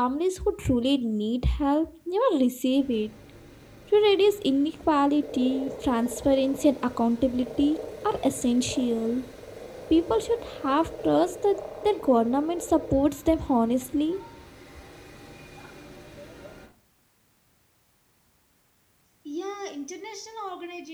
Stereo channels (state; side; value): identical; both; correlation 1.00